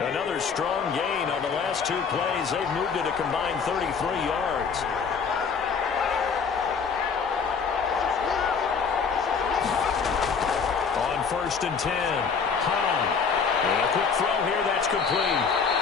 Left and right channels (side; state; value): right; quieter; 5.7 dB